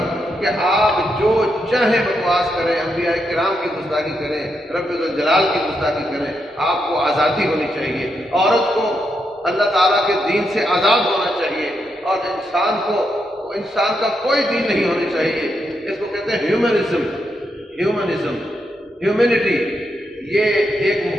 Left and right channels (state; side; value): normal; both; correlation 0.82